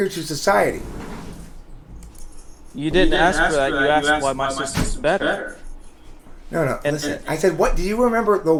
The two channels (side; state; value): both; identical; correlation 1.00